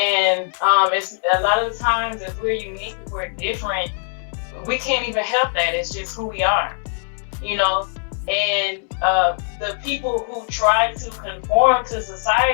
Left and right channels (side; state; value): right; silent; 65 dB below the other